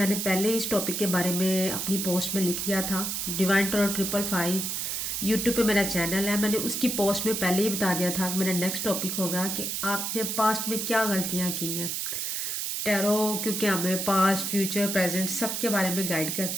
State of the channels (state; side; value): noise; right; hiss, 2 dB below the sound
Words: पहले इस टॉपिक के बारे में अपनी पोस्ट में लिख लिया था। डिवाइन टैरो 555 यूट्यूब पे मेरा चैनल है। मैंने उसकी पोस्ट में पहले ही बता दिया था कि मेरा नेक्स्ट टॉपिक होगा कि आपने पास्ट में क्या गलतियाँ की हैं। टैरो क्योंकि हमें पास्ट फ्यूचर प्रेजेंट सब के बारे में गाइड